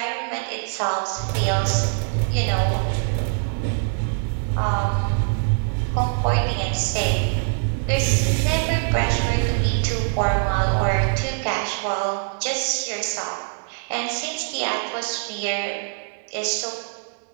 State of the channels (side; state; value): left; silent; 60 dB below the other